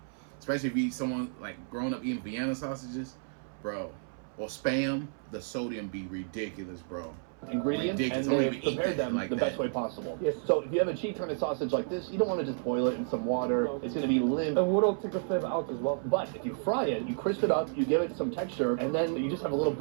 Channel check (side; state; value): left; silent; 57 dB below the other